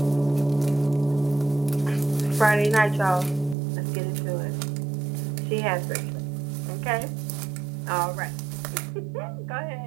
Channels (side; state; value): left; drops out; at 3.6 s